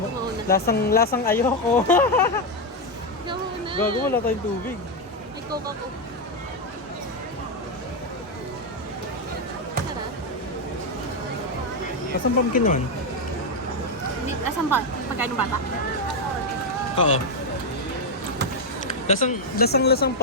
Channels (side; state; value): both; normal; correlation 0.05